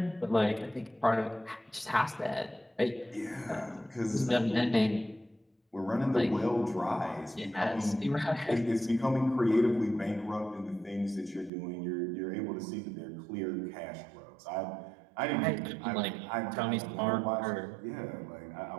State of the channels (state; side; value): drops out; left; at 11.5 s